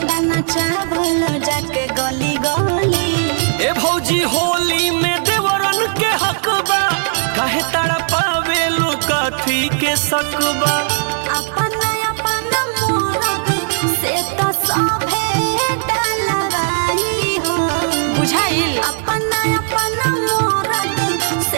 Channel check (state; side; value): silent; left; digital silence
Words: चावल जाके गली गली। ए भौजी होली में देवरन के हक बा काहे तड़पावे लुकाथी के सकबा अपन अपन मोरग से तो सभे डलवाई हो बुझाइल अपन अपन मोरग